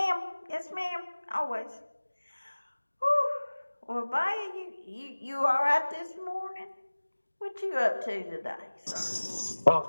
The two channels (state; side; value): inverted; both; correlation -1.00